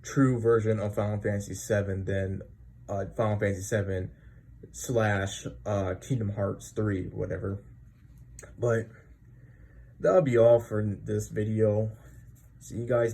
true version of Final Fantasy 7 than Final Fantasy 7 / Kingdom Hearts 3, whatever. But that'll be all for this video. See you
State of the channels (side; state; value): both; identical; correlation 1.00